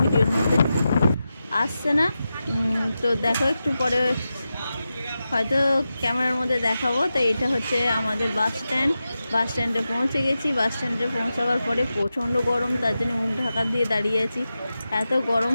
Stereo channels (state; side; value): inverted; both; correlation -0.91